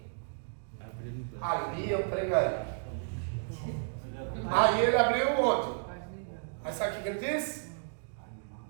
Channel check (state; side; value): silent; left; digital silence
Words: ali eu pregarei. Aí ele abriu onde? Mas sabe o que ele disse?